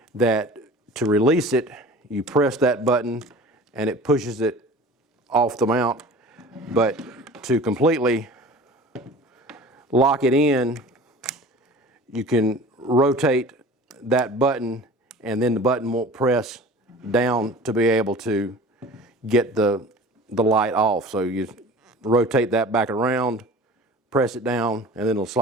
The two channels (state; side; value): normal; both; correlation 0.41